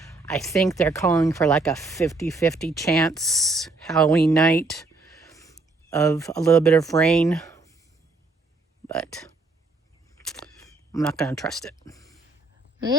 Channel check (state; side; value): quieter; left; 3.4 dB